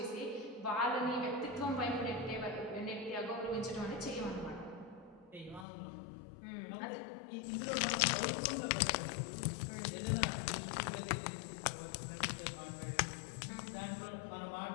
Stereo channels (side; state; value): right; drops out; at 5.7 s